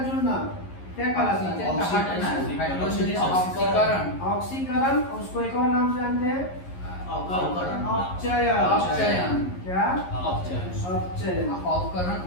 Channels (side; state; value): right; late; 11 ms